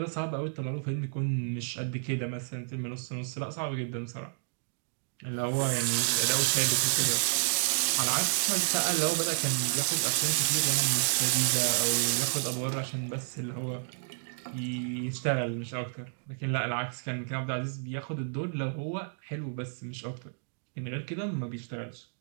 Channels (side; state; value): left; silent; digital silence